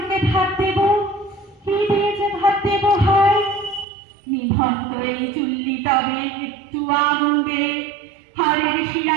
ভাত দেব, কি দিয়ে যে ভাত দেব হায়। নিভন্ত এই চুল্লি তবে একটু আগুন দে, হাড়ের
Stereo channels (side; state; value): left; drops out; at 3.9 s